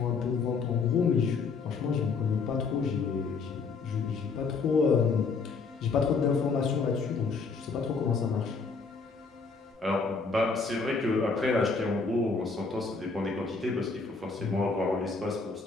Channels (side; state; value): right; quieter; 4.6 dB